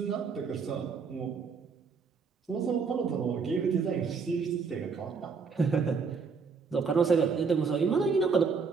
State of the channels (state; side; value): quieter; left; 5.3 dB